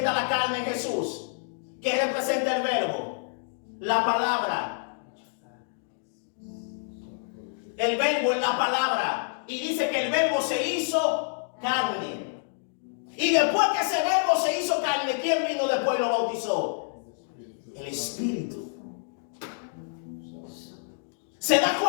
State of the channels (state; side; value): silent; right; digital silence